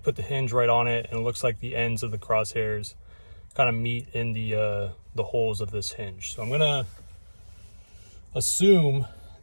put the hinge right on it, and it looks like the ends of the crosshairs kind of meet in the holes of this hinge. So I'm gonna assume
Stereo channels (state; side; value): inverted; both; correlation -1.00